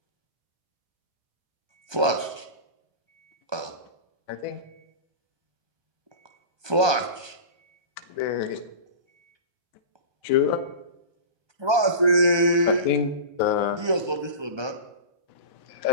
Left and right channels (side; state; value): left; late; 1.2 ms